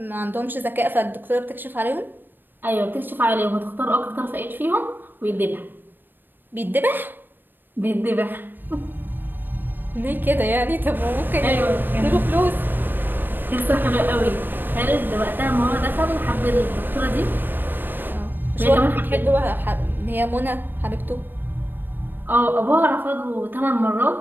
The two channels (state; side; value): late; left; 0.094 ms